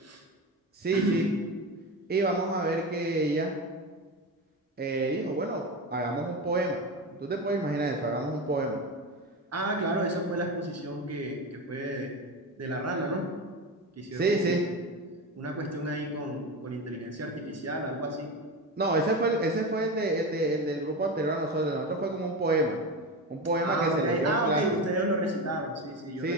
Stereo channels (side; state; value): both; normal; correlation 0.21